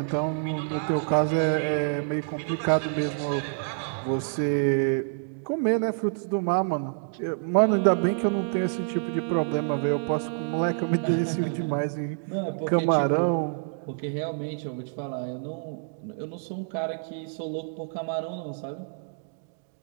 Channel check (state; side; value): silent; left; digital silence